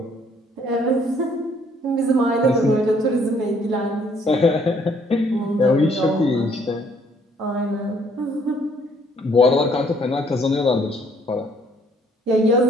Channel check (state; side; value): normal; both; correlation 0.64